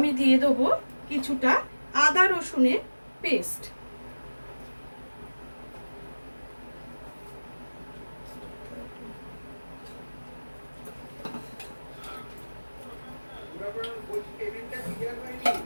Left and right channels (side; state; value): both; inverted; correlation -1.00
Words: দিয়ে দেবো কিছুটা আদা রসুনের পেস্ট।